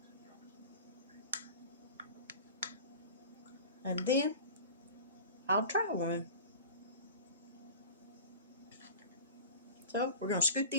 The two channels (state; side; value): inverted; both; correlation -0.37